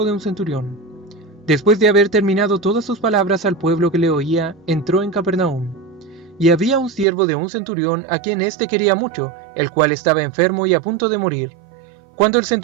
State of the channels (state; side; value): drops out; left; at 7.1 s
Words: de un centurión. Después de haber terminado todas sus palabras al pueblo que le oía, entró en Capernaum. Y había un siervo de un centurión a quien éste quería mucho, el cual estaba enfermo y a punto de morir. Cuando el